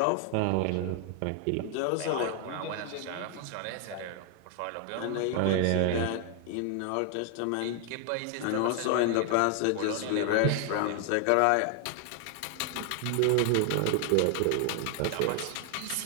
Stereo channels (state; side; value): different; both; correlation 0.00